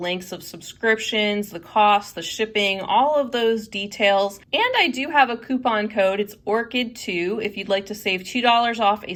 of subscriptions, the cost, the shipping, all of those details. And I do have a coupon code. It's ORCHID2 if you'd like to save $2 off a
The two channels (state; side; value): identical; both; correlation 1.00